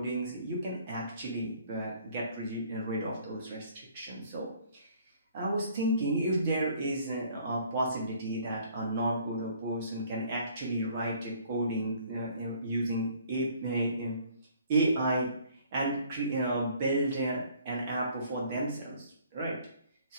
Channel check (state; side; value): inverted; both; correlation -0.58